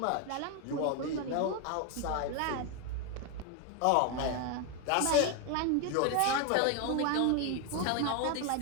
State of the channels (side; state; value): both; different; correlation 0.02